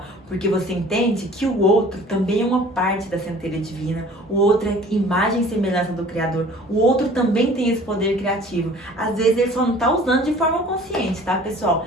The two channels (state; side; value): normal; both; correlation 0.49